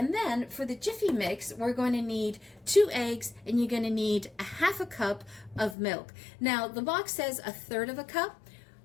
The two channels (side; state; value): right; drops out; at 5.8 s